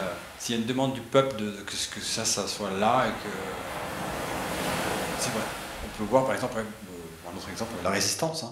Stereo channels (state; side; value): identical; both; correlation 1.00